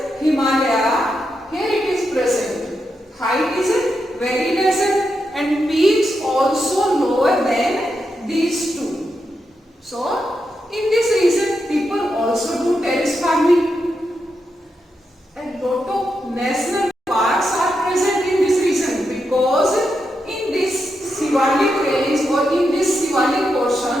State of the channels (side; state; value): both; normal; correlation 0.85